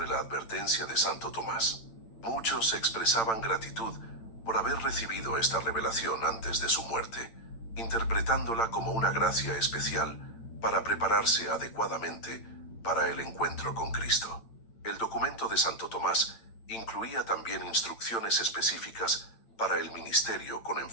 la advertencia de Santo Tomás. Muchos expresaban gratitud por haber recibido esta revelación antes de su muerte, interpretándola como una gracia especial para prepararse adecuadamente para el encuentro con Cristo. El documento de Santo Tomás incluía también instrucciones específicas para el ministerio con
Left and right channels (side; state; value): right; late; 8.9 ms